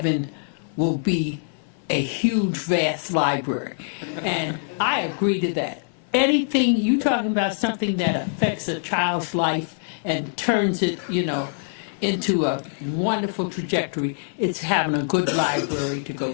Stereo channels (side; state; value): right; silent; 63 dB below the other